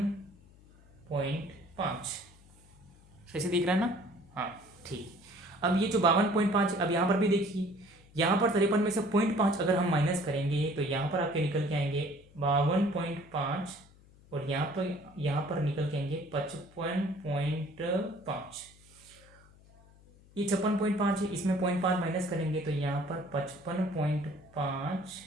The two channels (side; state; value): left; noise; hum, 26 dB below the sound